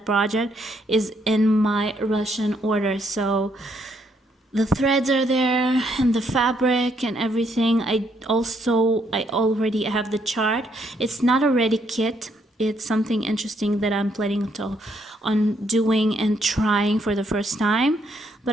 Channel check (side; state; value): both; normal; correlation 0.72